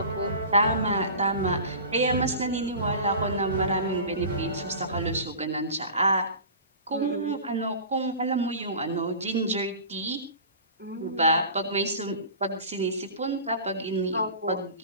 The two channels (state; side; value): inverted; both; correlation -0.37